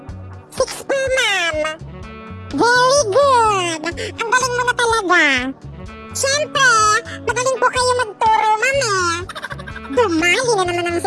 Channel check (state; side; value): identical; both; correlation 1.00